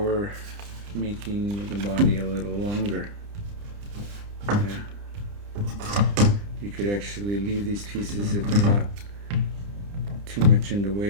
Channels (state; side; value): late; left; 30 ms